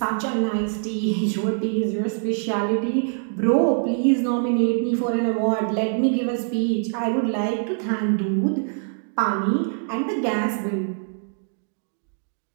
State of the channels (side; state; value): left; silent; digital silence